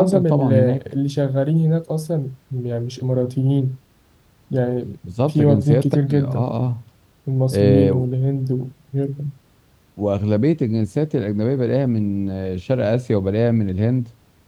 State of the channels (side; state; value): both; identical; correlation 1.00